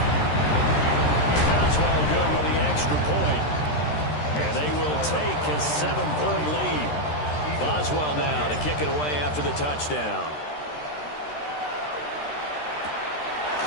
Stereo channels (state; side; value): late; right; 13 ms